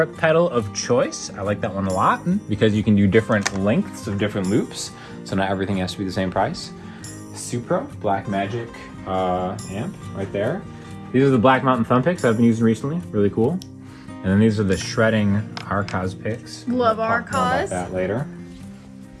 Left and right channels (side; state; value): both; identical; correlation 1.00